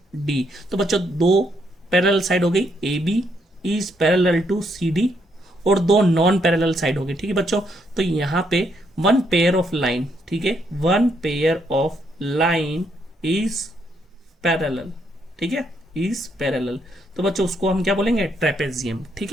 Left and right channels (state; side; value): normal; both; correlation 0.75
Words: डी। तो बच्चों दो पैरेलल साइड हो गई, A B is parallel to C D, और दो नॉन पैरेलल साइड हो गई। ठीक है बच्चों, तो यहाँ पे वन पेयर ऑफ लाइन, ठीक है, one pair of line is parallel, ठीक है, इज पैरेलल। तो बच्चों उसको हम क्या बोलेंगे, ट्रेपेजियम। ठीक